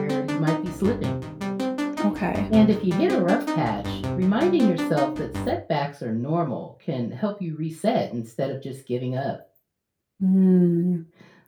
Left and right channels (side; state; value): both; identical; correlation 1.00